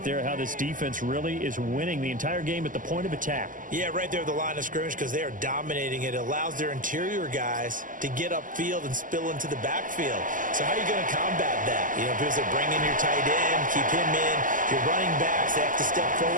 there how this defense really is winning the entire game at the point of attack. Yeah, right there at the line of scrimmage because they are dominating it. It allows their interior guys to get upfield and spill into the backfield. So how are you going to combat that? You know, because they bring in your tight end, keep him in. Your running backs, they have to step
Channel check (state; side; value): late; left; 0.38 ms